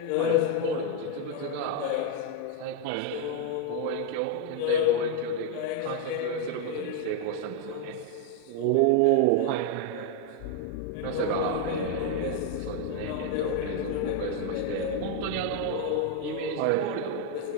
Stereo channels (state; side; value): different; both; correlation 0.01